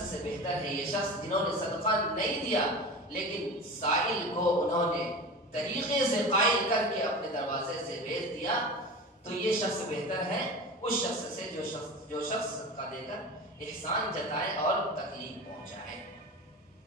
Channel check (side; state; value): both; normal; correlation 0.31